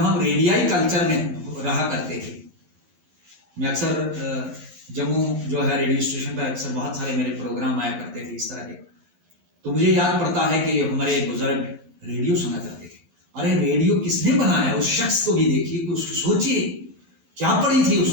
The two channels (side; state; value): left; late; 11 ms